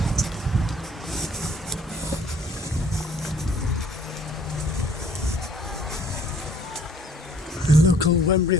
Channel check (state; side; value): normal; both; correlation 0.57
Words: The local Wembury